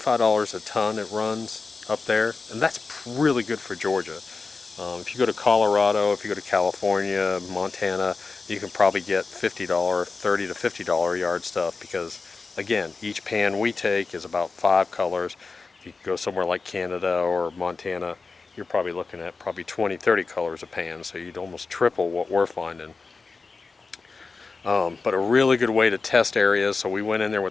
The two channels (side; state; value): right; quieter; 4.3 dB